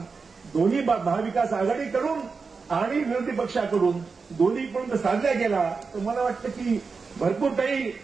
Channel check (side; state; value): left; quieter; 4.8 dB